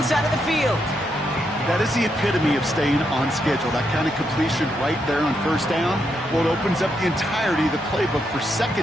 side of the field. That is the epitome of staying on schedule. That kind of completion right there on 1st down. Well, it opens up the entirety of the playbook for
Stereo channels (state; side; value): normal; both; correlation 0.80